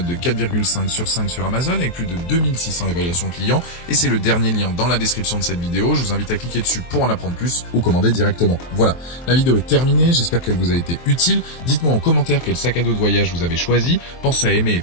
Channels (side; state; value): right; late; 23 ms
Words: de 4,5 sur 5 sur Amazon avec plus de 2600 évaluations clients et c'est le dernier lien dans la description de cette vidéo. Je vous invite à cliquer dessus pour en apprendre plus ou commander directement. Voilà, la vidéo est terminée, j'espère qu'elle vous a été utile. Dites-moi en commentaire quel sac à dos de voyage vous avez choisi. Pensez à aimer et